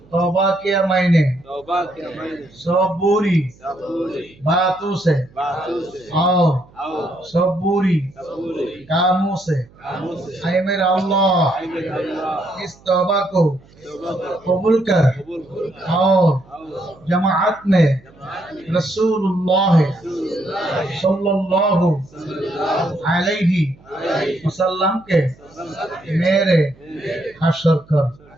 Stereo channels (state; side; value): noise; right; hum, 27 dB below the sound